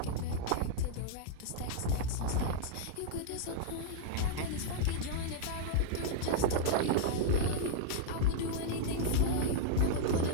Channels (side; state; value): both; different; correlation -0.01